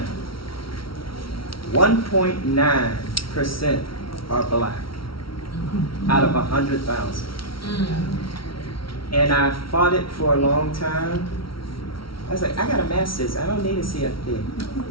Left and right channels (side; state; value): right; late; 0.74 ms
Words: 1.9% are black out of 100,000. And I fought it for a long time. I was like, I got a master's, I don't need a CFP.